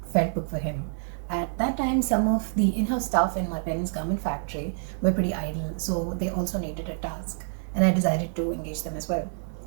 felt book for him. At that time, some of the in house staff in my parents' garment factory were pretty idle, so they also needed a task. And I decided to engage them as well.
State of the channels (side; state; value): left; silent; digital silence